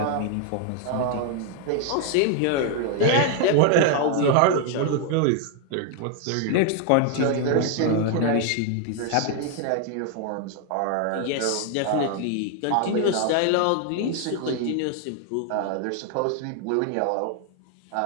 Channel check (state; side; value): different; both; correlation 0.00